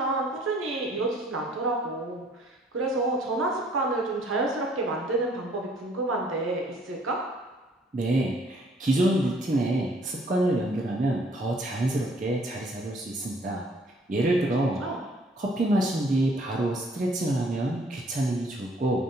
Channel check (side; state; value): both; normal; correlation 0.60